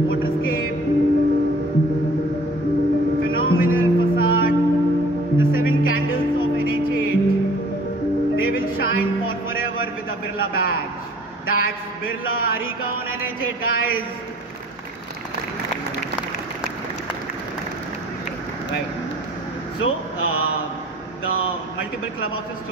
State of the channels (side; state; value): both; normal; correlation 0.52